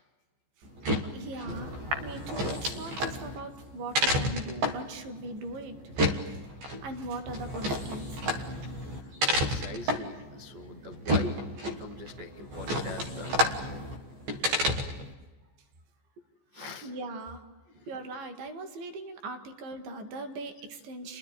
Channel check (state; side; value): late; left; 14 ms